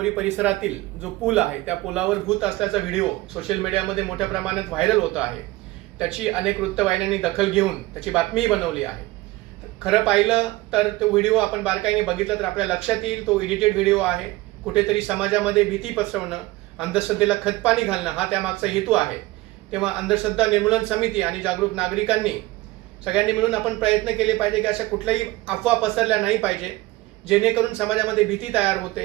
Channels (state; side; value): quieter; left; 19.6 dB